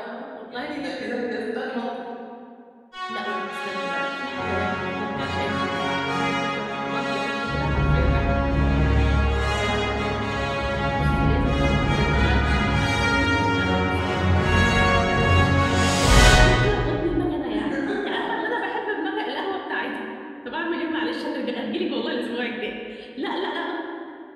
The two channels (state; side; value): identical; both; correlation 1.00